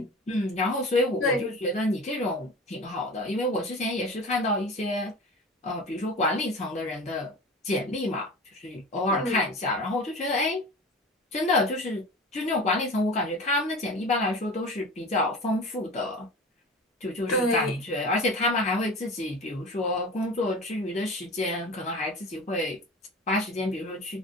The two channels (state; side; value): normal; both; correlation 0.34